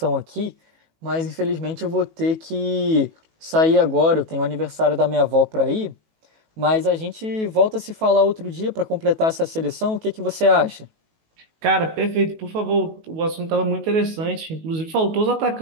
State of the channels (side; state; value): left; late; 18 ms